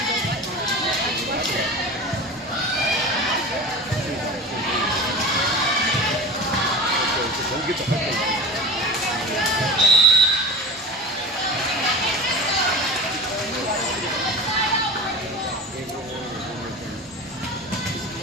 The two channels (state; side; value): normal; both; correlation 0.30